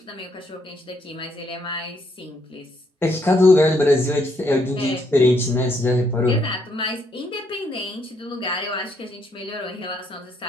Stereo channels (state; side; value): normal; both; correlation 0.73